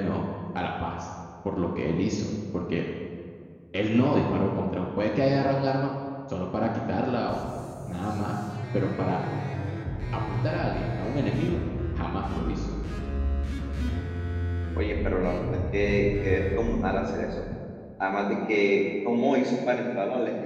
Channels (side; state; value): both; identical; correlation 1.00